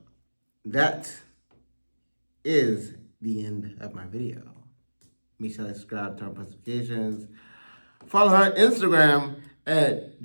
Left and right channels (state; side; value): inverted; both; correlation -1.00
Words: that is the end of my video. Make sure to subscribe, turn on notifications. Follow her on Instagram at